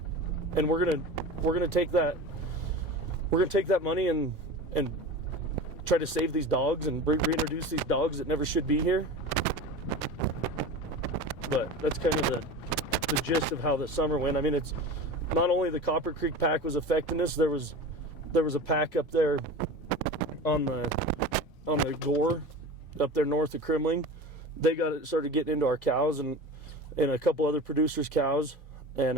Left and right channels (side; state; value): both; normal; correlation 0.32